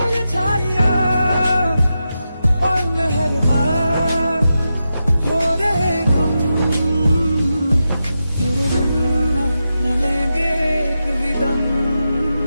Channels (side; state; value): both; inverted; correlation -0.89